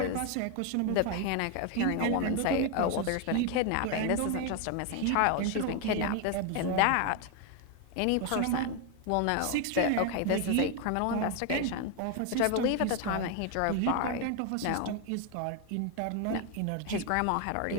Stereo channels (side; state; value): both; different; correlation 0.01